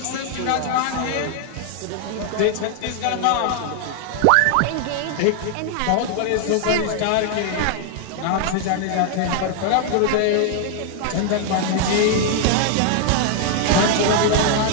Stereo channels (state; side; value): different; both; correlation 0.00